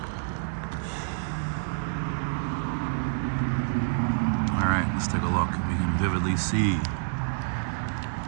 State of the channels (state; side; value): silent; left; digital silence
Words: Alright, let's take a look. We can vividly see